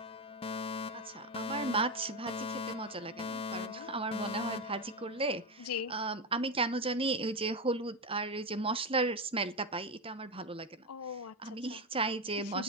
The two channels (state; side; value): normal; both; correlation 0.12